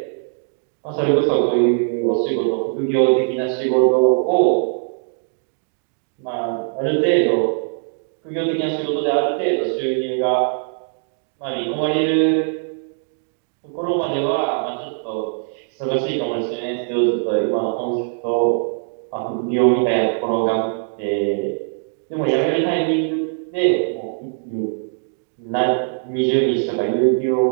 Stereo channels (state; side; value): silent; left; digital silence